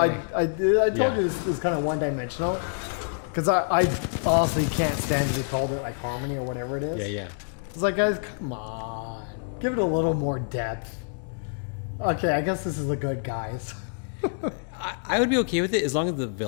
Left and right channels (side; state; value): right; silent; digital silence